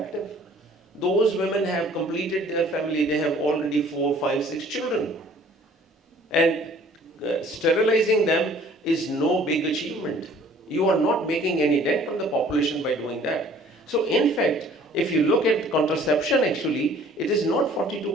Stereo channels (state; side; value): normal; both; correlation 0.54